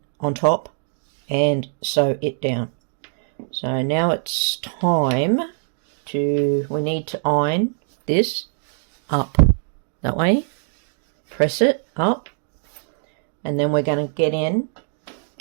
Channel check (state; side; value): silent; left; digital silence